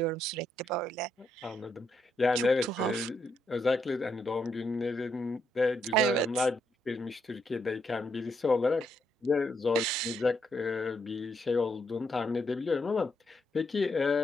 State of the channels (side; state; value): both; normal; correlation 0.78